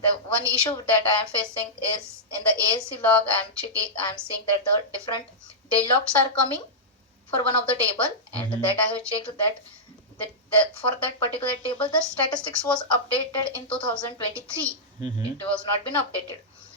the one issue that I am facing is in the ASC log. I'm seeing that the different deadlocks are coming for one of the table, and Mm-hmm. that I have checked that for that particular table the statistics was updated in 2023. Mm-hmm. It was not been updated.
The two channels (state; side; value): normal; both; correlation -0.11